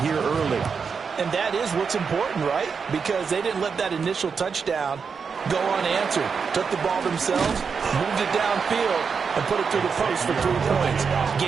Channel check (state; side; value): quieter; left; 5.8 dB